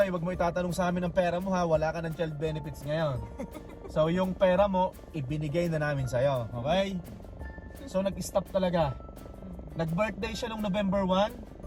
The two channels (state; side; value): identical; both; correlation 1.00